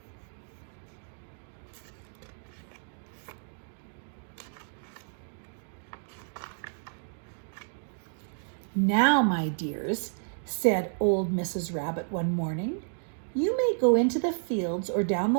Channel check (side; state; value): left; silent; digital silence